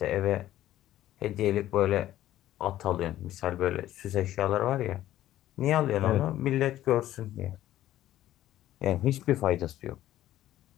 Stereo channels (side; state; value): right; quieter; 13.6 dB